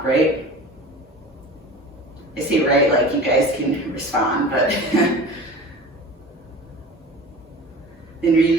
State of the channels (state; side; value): normal; both; correlation 0.37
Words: right? I say right like you guys can respond, but. Then